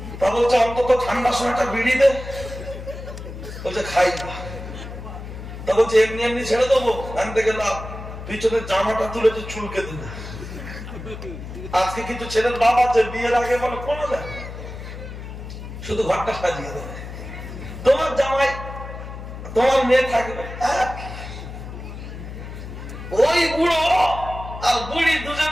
তা বলছে অন্তত ঠান্ডার সময়টা বিড়ি দে। বলছে খাই না। তা বলছে এমনি এমনি ছেড়ে দেবো, আনতে গেলাম পিছনের জামাটা তুলে চুলকে দিল। আজকে কিছু ছেলের বাপ আছে বিয়ের আগে বলে কোনো দেয়, শুধু ঘরটা সাজিয়ে দেবে, তোমার জামাই তোমার মেয়ে থাকবে। ওই বুড়ো আর বুড়ি দুজন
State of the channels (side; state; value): left; noise; hum, 10 dB below the sound